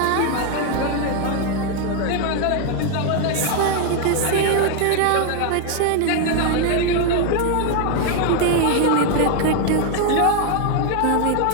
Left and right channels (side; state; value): both; different; correlation 0.00